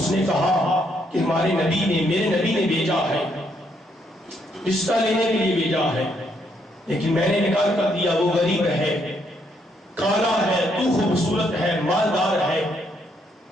نے کہا کہ ہمارے نبی نے، میرے نبی نے بھیجا ہے، رشتہ لینے کے لیے بھیجا ہے، لیکن میں نے انکار کر دیا، وہ غریب ہے، کالا ہے، تو خوبصورت ہے، مالدار ہے.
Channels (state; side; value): normal; both; correlation 0.73